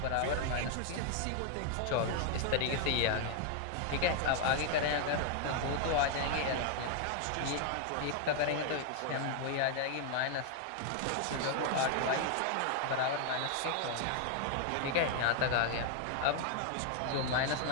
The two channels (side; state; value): both; different; correlation 0.00